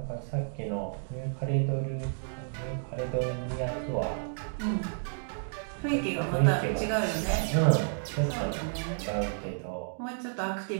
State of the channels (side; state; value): left; silent; digital silence